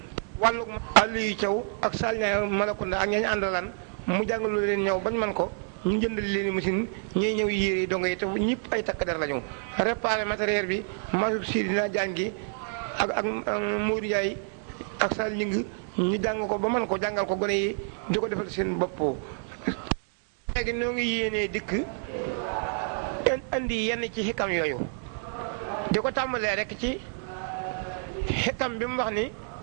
wàllu Aliou Thiaw ak Salña Malakunda ak ñañ àndalan mu jàngalu leen ñëw bañ man ko ñu jëndal leen machine ñuy ñëw yére yi dongo yi te ñëpp ay takk der lañu réparé matériel bi masub si dina jàng gi ak Modou Ndiaye ak Sall ñing ñu jàng ko ba man ko jàngal ko gone yi di ko defal seen bopp léegi noo ngi yéenee dikk andi yenn ci xikam yooyu di ko tàmbalee rek ci xikam bi mu wax ni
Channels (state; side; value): silent; left; 59 dB below the other